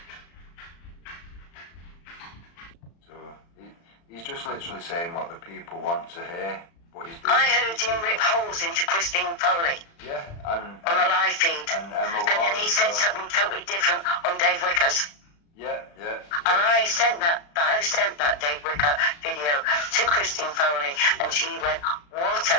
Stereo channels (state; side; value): late; right; 35 ms